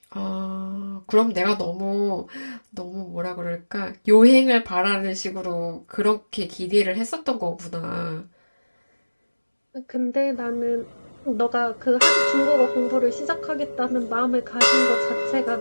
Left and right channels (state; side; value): inverted; both; correlation -1.00